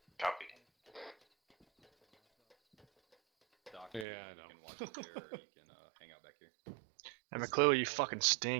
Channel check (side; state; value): left; drops out; at 4.0 s